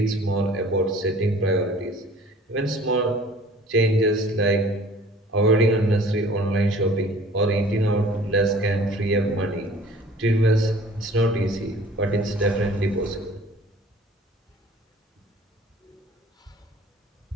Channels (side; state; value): both; normal; correlation 0.50